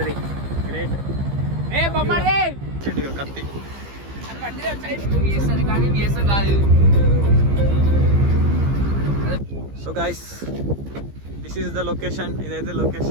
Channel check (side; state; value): left; late; 15 ms